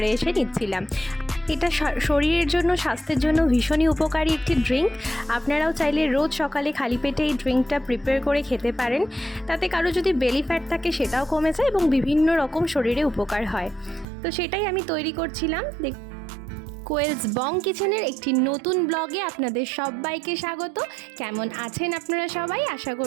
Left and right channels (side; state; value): left; drops out; at 14.1 s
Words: এসে নিচ্ছিলাম। এটা শরীরের জন্য, স্বাস্থ্যের জন্য ভীষণই উপকারী একটি ড্রিঙ্ক। আপনারাও চাইলে রোজ সকালে খালি পেটে এই ড্রিঙ্কটা প্রিপেয়ার করে খেতে পারেন। তাতে কারো যদি বেলি ফ্যাট থাকে সেটাও কমে যায় এবং বিভিন্ন রকম শরীরে উপকার হয়। তো সেটাই আমি তৈরি করছিলাম। কোয়েলস বং কিচেনের একটি নতুন ব্লগে আপনাদের সবাইকে স্বাগত। কেমন আছেন আপনারা সবাই? আশা